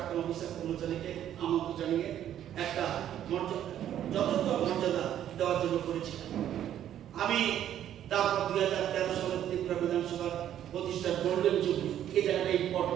অফিসার কর্মচারীকে আমন্ত্রণ জানিয়ে একটা যথাযথ মর্যাদা দেওয়ার জন্য করেছিলাম। আমি তারপর 2013 সালে ত্রিপুরা বিধানসভার প্রতিষ্ঠার গোল্ডেন জুবলি, এই জায়গাটা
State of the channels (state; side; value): quieter; left; 10.9 dB